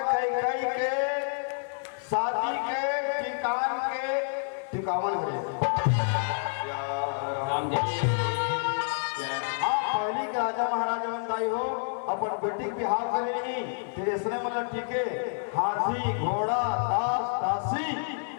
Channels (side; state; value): right; silent; digital silence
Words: कैकेयी के शादी के टिकावन है। पहली के राजा महाराजा बनताई हो अपन बेटी बिहाव करेगी फिर इसने मतलब टीके हाथी घोड़ा दास दासी